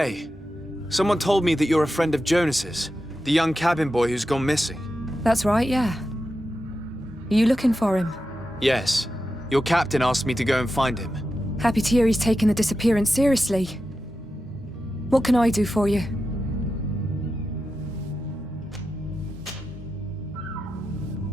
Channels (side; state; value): both; normal; correlation 0.90